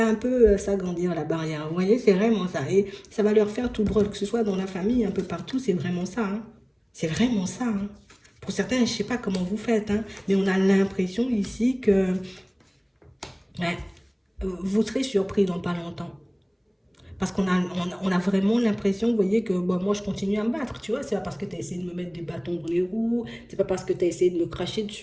un peu s'agrandir la barrière. Vous voyez, c'est vraiment ça. Et ça va leur faire tout drôle, que ce soit dans la famille, un peu partout. C'est vraiment ça. Hein. C'est vraiment ça. Hein. Pour certains, je ne sais pas comment vous faites, hein, mais on a l'impression ici que ouais, vous serez surpris dans pas longtemps. Parce qu'on a vraiment l'impression, vous voyez, que bon, moi je continue à me battre, tu vois. C'est pas parce que tu as essayé de me mettre des bâtons dans les roues, c'est pas parce que tu as essayé de me cracher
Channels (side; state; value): both; identical; correlation 1.00